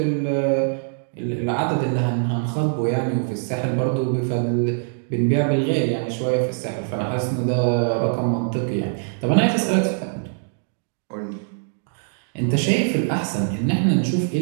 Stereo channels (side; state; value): left; silent; digital silence